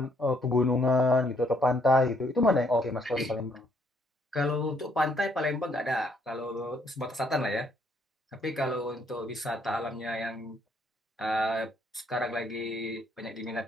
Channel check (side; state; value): both; normal; correlation 0.69